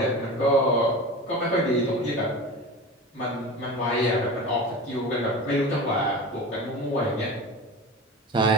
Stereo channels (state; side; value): normal; both; correlation 0.31